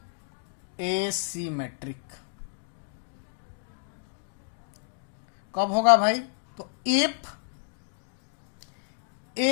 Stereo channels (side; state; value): right; silent; digital silence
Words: asymmetric. कब होगा भाई? तो if